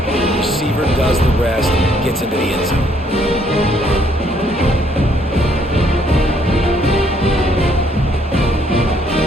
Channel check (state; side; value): normal; both; correlation 0.67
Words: receiver does the rest, gets into the end zone.